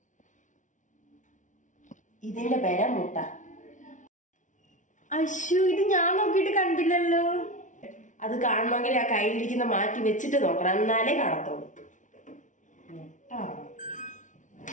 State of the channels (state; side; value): late; right; 0.37 ms